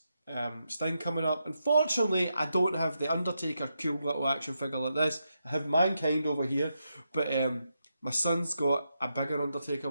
Sting coming up. Unfortunately, I don't have the Undertaker cool little action figure like this. I have Mankind over here, but my son's got a bigger Undertaker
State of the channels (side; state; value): both; inverted; correlation -0.84